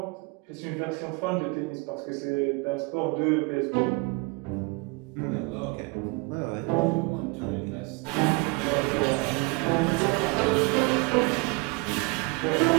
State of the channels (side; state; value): left; quieter; 27.1 dB